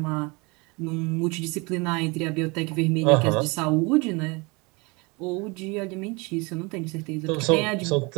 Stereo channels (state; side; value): quieter; left; 27.6 dB